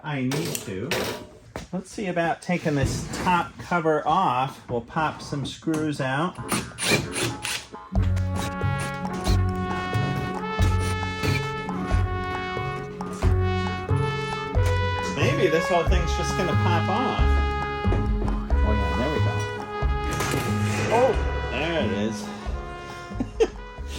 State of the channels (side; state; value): both; identical; correlation 1.00